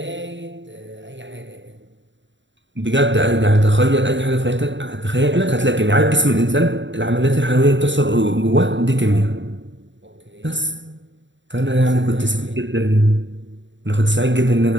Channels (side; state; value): left; late; 0.54 ms